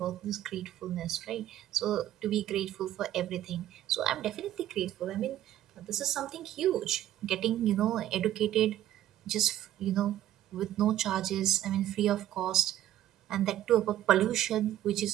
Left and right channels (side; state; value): left; quieter; 12.8 dB